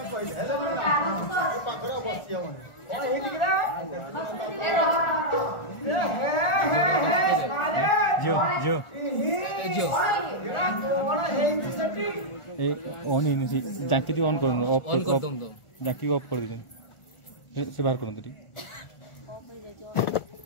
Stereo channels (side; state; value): right; late; 1.4 ms